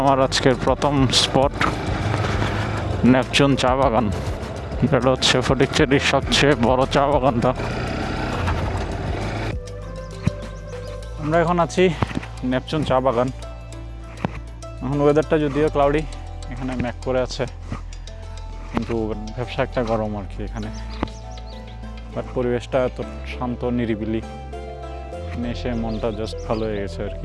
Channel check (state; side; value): identical; both; correlation 1.00